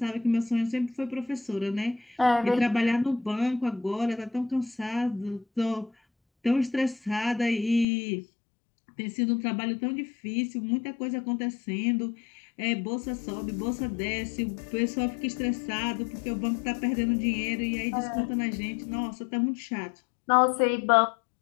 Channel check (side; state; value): right; drops out; at 7.9 s